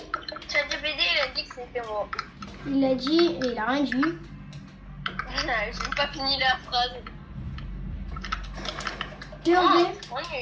ChatGPT, il a dit que c'était moi. Il l'a dit et il a rien dit. J'ai pas fini la phrase. POV, Oui.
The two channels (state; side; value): identical; both; correlation 1.00